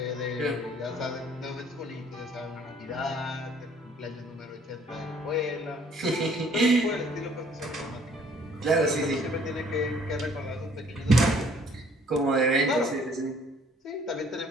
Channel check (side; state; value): both; normal; correlation 0.59